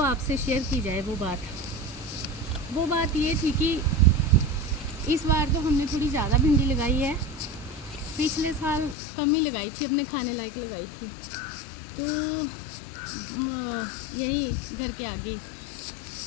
आपसे शेयर की जाए वो बात। वो बात ये थी कि इस बार तो हमने थोड़ी ज़्यादा भिंडी लगाई है। पिछले साल कम ही लगाई थी, अपने खाने लायक लगाई थी। तो यही घर के आगे,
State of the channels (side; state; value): right; drops out; at 9.0 s